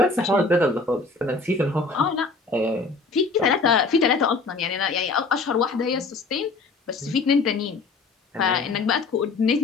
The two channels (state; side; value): quieter; right; 4.0 dB